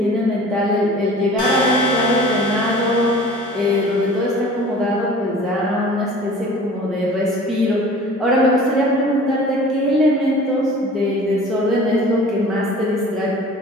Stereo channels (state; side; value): normal; both; correlation 0.44